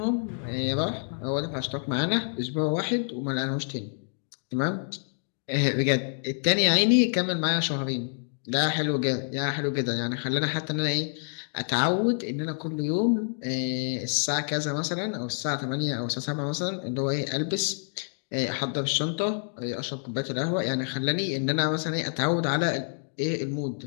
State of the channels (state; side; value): silent; right; digital silence